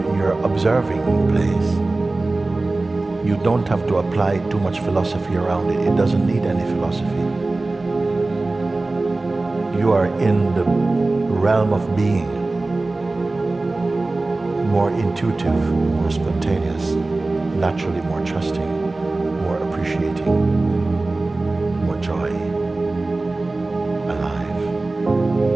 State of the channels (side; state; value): left; quieter; 3.2 dB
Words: your observing place, you don't have to apply too much philosophy around it. It doesn't need any philosophy. You are in the realm of being, more intuitive, more spontaneous, naturally more trusting, more appreciating, more joy, alive,